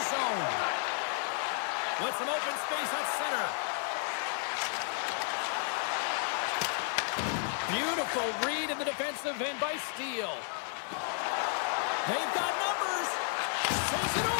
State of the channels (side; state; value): right; silent; 56 dB below the other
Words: zone. With some open space at center. Beautiful read in the defensive end by Steele. They've got numbers.